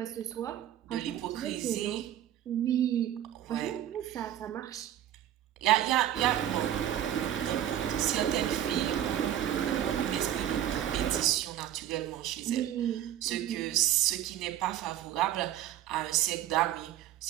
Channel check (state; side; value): quieter; left; 11.5 dB